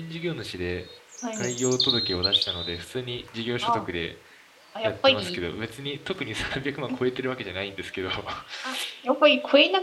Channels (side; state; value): both; identical; correlation 1.00